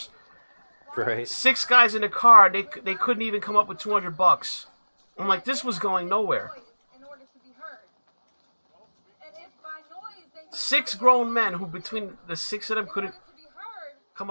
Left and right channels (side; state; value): both; inverted; correlation -1.00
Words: Right. 6 guys in a car. They couldn't even come up with $200. I'm like, this was going nowhere. 6 grown men who, between the 6 of them, couldn't come